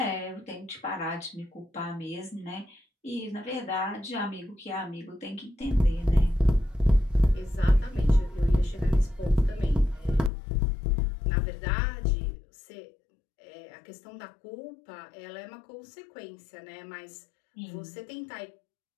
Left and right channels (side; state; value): right; drops out; at 10.3 s